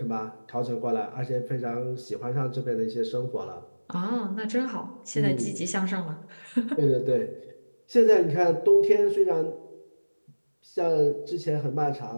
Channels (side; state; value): both; inverted; correlation -1.00